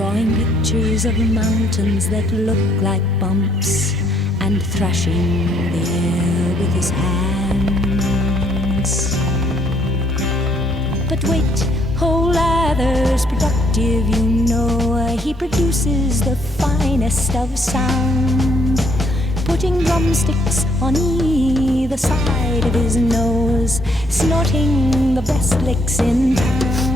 pictures of mountains that look like bumps, and thrashing the air with his hands. But wait, oh, Lather's productive, you know. He produces the finest of sound, putting drumsticks on either side of his nose, snorting the best licks in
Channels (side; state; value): both; normal; correlation 0.68